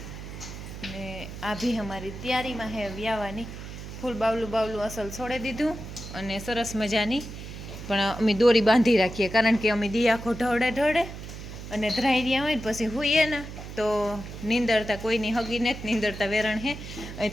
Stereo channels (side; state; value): right; noise; hum, 11 dB below the sound